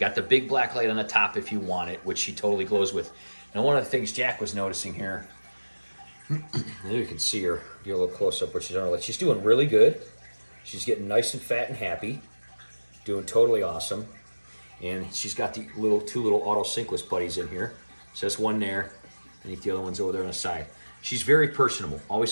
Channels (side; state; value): both; inverted; correlation -1.00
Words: the big black light on the top if you want it, which she totally glows with. Now, one of the things Jack was noticing here, there you can see her, get a little close up where she's on her light. She's doing really good. She's getting nice and fat and happy, doing totally awesome. And she's got the two little auto synkless buddies in here. So that's one there. I think the other one's over there on the side. She's very personable.